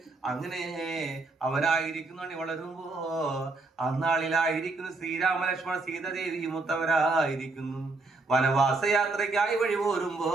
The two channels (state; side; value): quieter; left; 3.4 dB